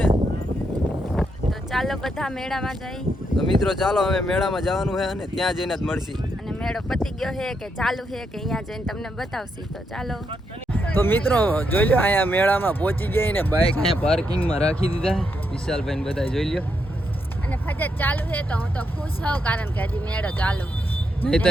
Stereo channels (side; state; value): both; normal; correlation 0.80